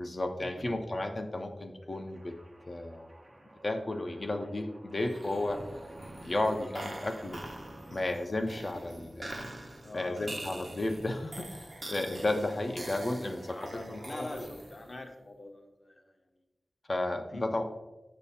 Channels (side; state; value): both; normal; correlation 0.96